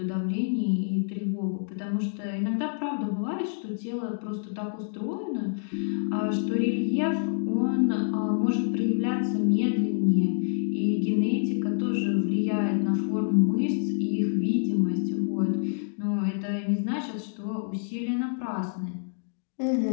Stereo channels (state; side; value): silent; right; digital silence